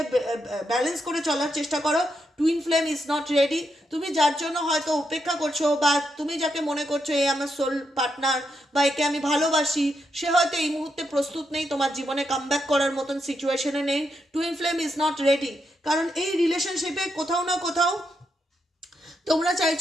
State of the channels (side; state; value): both; normal; correlation 0.82